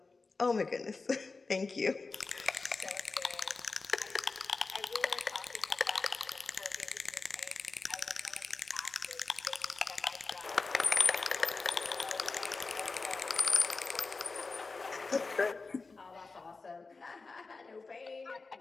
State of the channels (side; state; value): right; quieter; 4.0 dB